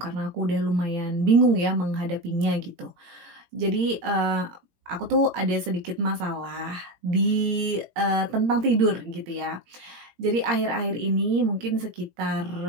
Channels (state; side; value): late; left; 18 ms